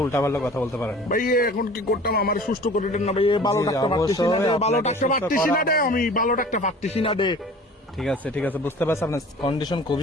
উল্টাপাল্টা কথা বলতে পারেন ভাইয়া। এখন কি করতাম? আমার সুস্থ করে দেন না ভাইয়া, ভালো ডাক্তার পাচ্ছি না রে, ভালো ডাক্তার পাচ্ছি না রে, আমি ভালো ডাক্তার পাচ্ছি না রে। ঠিক আছে ঠিক আছে, বুঝতে পারছি আপনার কন্ডিশন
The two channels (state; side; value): normal; both; correlation 0.44